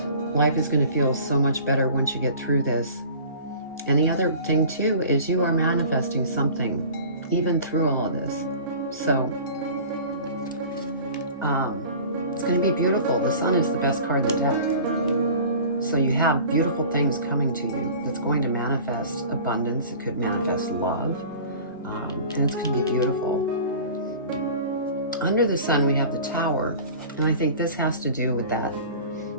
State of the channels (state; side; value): inverted; both; correlation -0.42